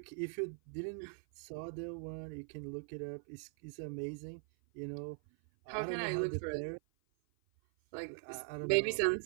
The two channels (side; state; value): left; silent; 51 dB below the other